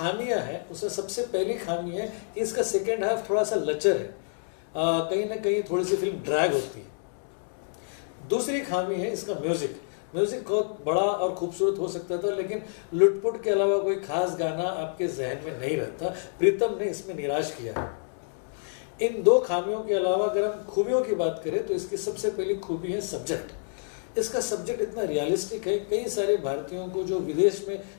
हैं, उसमें सबसे पहली खामी है कि इसका सेकेंड हाफ थोड़ा सा लचर है, कहीं ना कहीं थोड़ी सी फिल्म ड्रैग होती है। दूसरी खामी है इसका म्यूजिक बहुत बड़ा और खूबसूरत हो सकता था, लेकिन लुटपुट के अलावा कोई खास गाना आपके जहन में नहीं रहता। प्रीतम ने इसमें निराश किया है। इन 2 खामियों के अलावा अगर हम खूबियों की बात करें तो इसकी सबसे पहली खूबी है सब्जेक्ट। इसका सब्जेक्ट इतना रियलिस्टिक है, कई सारे भारतीयों को जो विदेश में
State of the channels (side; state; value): right; silent; digital silence